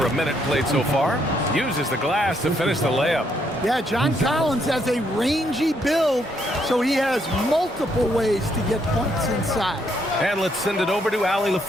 a minute played so far. Uses the glass to finish the layup. Yeah, John Collins has a rangy build, so he has multiple ways to get points inside. And let's send it over to Allie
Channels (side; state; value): both; normal; correlation 0.73